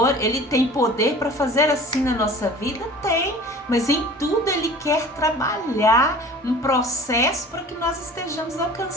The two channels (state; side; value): normal; both; correlation 0.43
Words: Ele tem poder para fazer assim na nossa vida? Tem, mas em tudo Ele quer trabalhar um processo para que nós estejamos